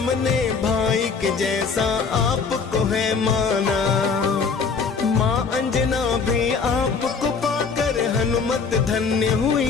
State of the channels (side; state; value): right; quieter; 5.3 dB